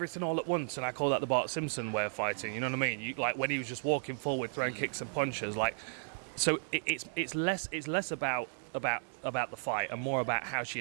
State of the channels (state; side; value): silent; left; digital silence